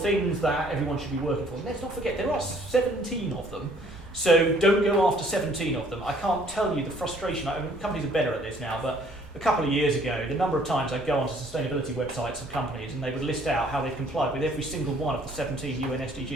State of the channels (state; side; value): normal; both; correlation 0.59